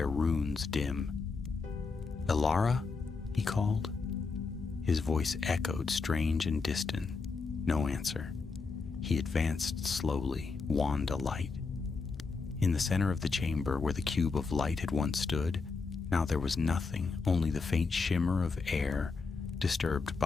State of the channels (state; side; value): quieter; right; 4.4 dB